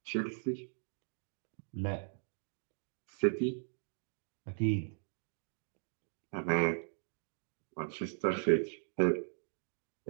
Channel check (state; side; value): silent; left; digital silence